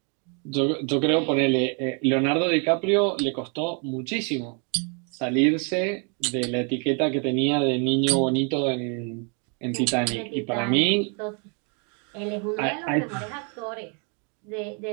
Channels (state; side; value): quieter; left; 37.9 dB